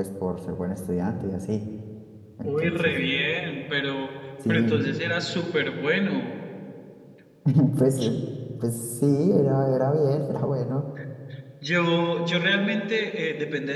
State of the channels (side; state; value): both; identical; correlation 1.00